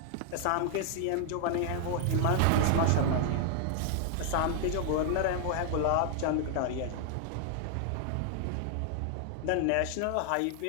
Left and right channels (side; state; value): both; different; correlation 0.00